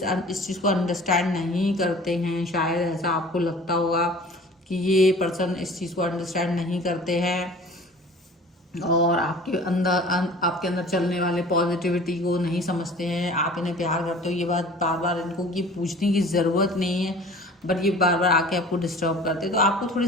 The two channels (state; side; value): normal; both; correlation 0.45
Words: चीज़ को अंडरस्टैंड नहीं करते हैं, शायद ऐसा आपको लगता होगा कि ये पर्सन इस चीज़ को अंडरस्टैंड नहीं करते हैं और आपके अंदर चलने वाले पॉजिटिविटी को नहीं समझते हैं। आप इन्हें प्यार करते हो, ये बात बार बार इनको ये पूछने की ज़रूरत नहीं है, बट ये बार बार आके आपको डिस्टर्ब करते हैं, तो आपको थोड़ी